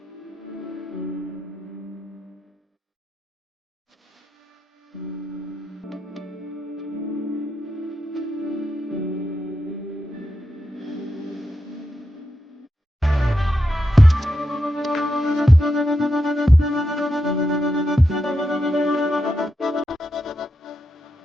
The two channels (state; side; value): normal; both; correlation 0.86